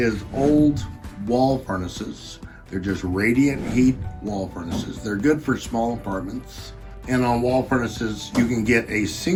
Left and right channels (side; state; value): both; identical; correlation 1.00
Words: old wall furnaces. They're just radiant heat wall furnaces. They're good for small apartments. And on wall furnaces, you can get a